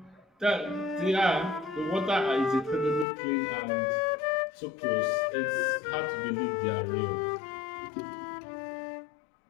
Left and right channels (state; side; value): drops out; right; at 3.1 s